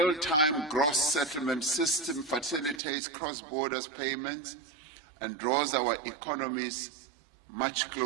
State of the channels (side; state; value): left; drops out; at 2.8 s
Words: Gross Settlement System facilitates cross-border payments and draws our economies much